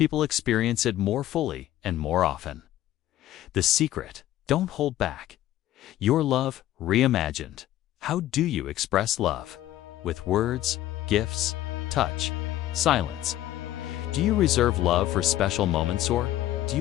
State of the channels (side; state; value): right; quieter; 13.8 dB